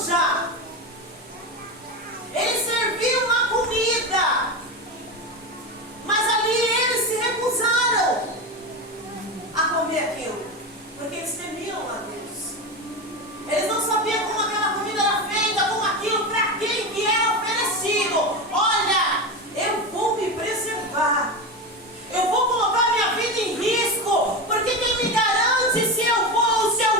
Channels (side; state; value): both; normal; correlation 0.19